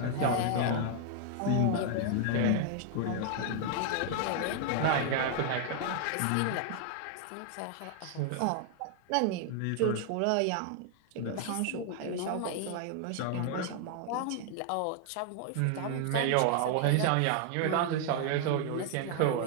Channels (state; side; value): different; both; correlation 0.00